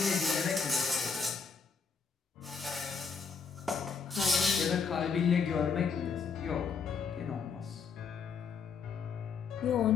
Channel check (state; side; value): quieter; right; 5.6 dB